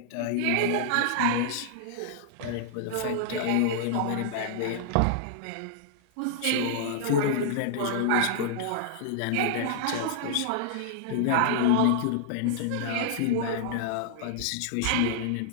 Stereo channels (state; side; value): different; both; correlation -0.01